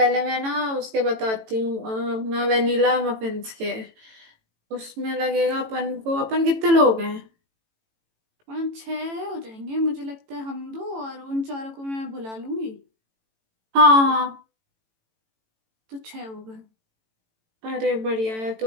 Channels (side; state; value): left; late; 18 ms